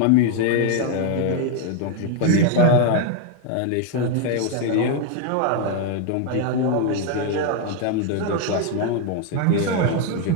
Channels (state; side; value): different; both; correlation 0.01